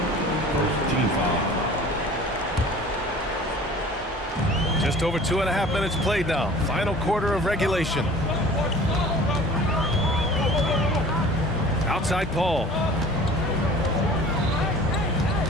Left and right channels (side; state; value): both; normal; correlation 0.45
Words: Team foul. Just over 2.5 minutes played now. Final quarter of regulation. Outside Paul.